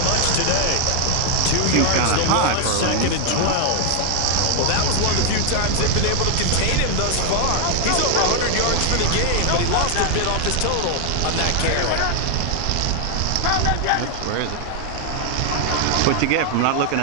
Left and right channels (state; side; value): different; both; correlation 0.00